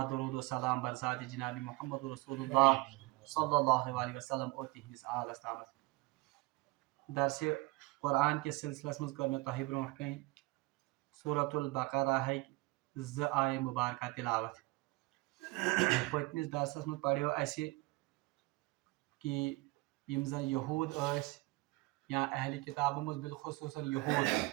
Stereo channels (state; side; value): quieter; left; 22.6 dB